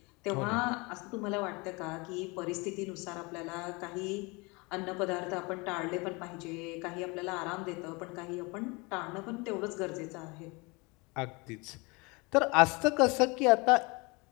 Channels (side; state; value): right; quieter; 27.4 dB